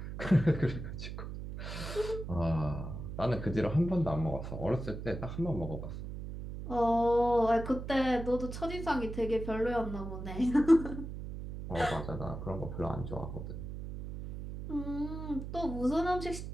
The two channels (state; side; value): noise; right; hum, 8 dB below the sound